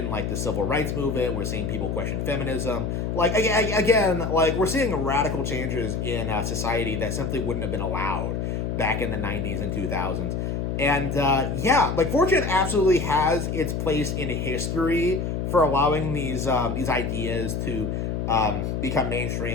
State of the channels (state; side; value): noise; left; hum, 2 dB below the sound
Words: like the civil rights movement. We're seeing people question feminism. Like again, like we're seeing radical changes in society that simply wouldn't have been allowed back in the '90s and 2000s. And yeah, like 4chan absolutely has its place in history for allowing these ideas to become